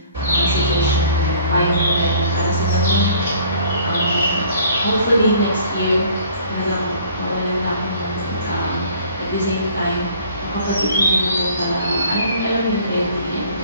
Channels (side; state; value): both; inverted; correlation -0.53